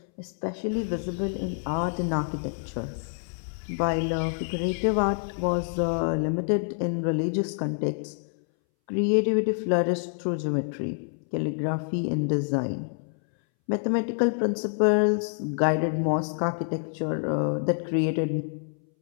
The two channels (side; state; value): right; silent; 60 dB below the other